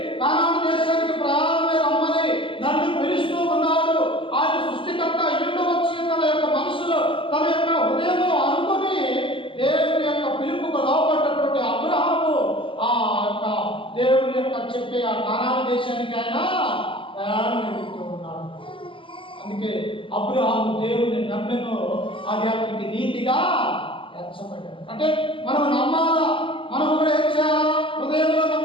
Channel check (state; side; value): late; right; 0.25 ms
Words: కానాను దేశానికి ప్రయాణమై రమ్మని నన్ను పిలుస్తూ ఉన్నాడు. ఆయన సృష్టికర్త ఇంటి వచ్చి తన యొక్క మనసులో తన యొక్క హృదయంలో అనుకుని దేవుని యొక్క పిలుపుకు లోపడ్డటువంటి అబ్రహాము ఆ యొక్క దేవుని యొక్క చెప్పే ఆ కానాను దేశానికి ఆయన ప్రయాణం వెళ్తూ ఉన్నాడు. అందుకే అబ్రహాము దేవుని నమ్మెను, అది అతనికి నీతిగా ఎంచబడ్డాడు. అంటే మనం నమ్మాలా, మనం కూడా ఏం చేయాలా? హృదయంలో